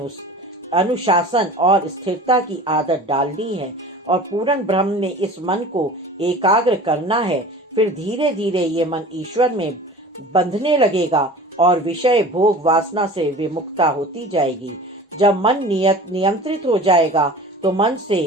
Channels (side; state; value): both; normal; correlation 0.40